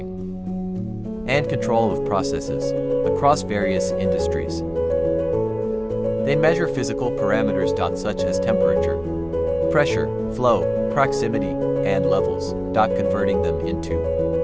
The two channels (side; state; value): both; identical; correlation 1.00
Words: and control of processes across various industries. They measure physical parameters such as temperature, pressure, flow, proximity, and levels, converting them into